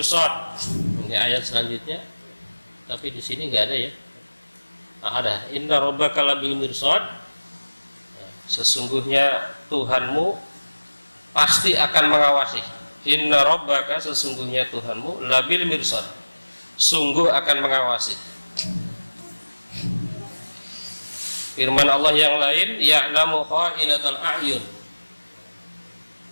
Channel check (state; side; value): inverted; both; correlation -1.00